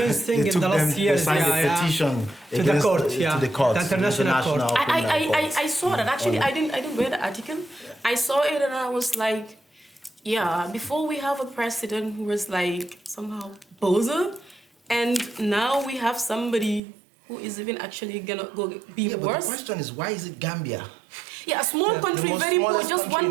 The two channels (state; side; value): drops out; left; at 16.8 s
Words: thing in the last years. They signed a petition to the court, to the court, the international court. I saw that. Actually, I didn't read the article. I saw it and I was like, yeah. Before we have a president who was like somehow bozo, and now we have somebody who is even actually gonna be But worse. the question is, why is it Gambia? Yeah, a small country, very poor, just